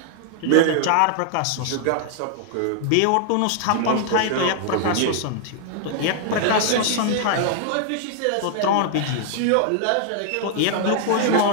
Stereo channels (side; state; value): both; different; correlation 0.00